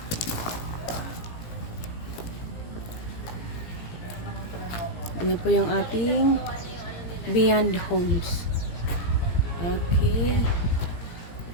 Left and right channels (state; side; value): late; right; 17 ms